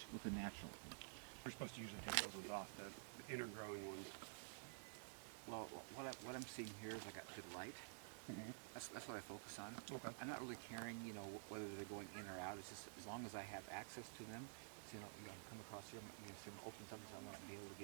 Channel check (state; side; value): silent; left; digital silence